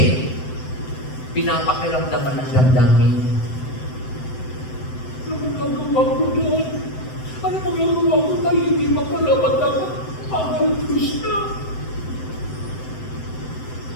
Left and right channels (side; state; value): right; late; 7.8 ms